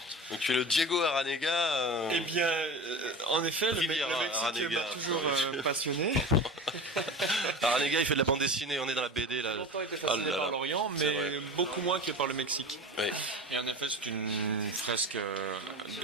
Donc tu es le Diego Aranega. Eh bien, en effet, le Mexique Aranega, m'a toujours passionné. Aranega, il fait de la bande dessinée, on est dans la BD là. J'ai longtemps été fasciné par l'Orient, mais beaucoup moins que par le Mexique. Oui. Et en effet, c'est une fresque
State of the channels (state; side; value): normal; both; correlation 0.31